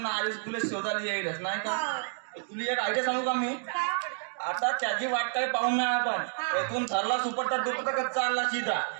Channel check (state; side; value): silent; left; digital silence